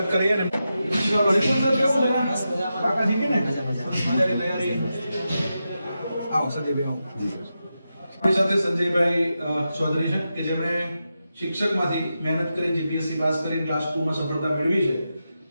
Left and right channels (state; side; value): inverted; both; correlation -0.89